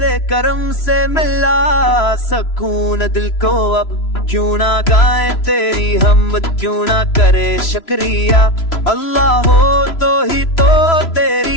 करम से मिला सकून दिल को अब। क्यों ना गाए तेरी हमद, क्यों ना करे शुक्रिया, अल्लाह हो तो ही तो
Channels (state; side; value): late; right; 3.0 ms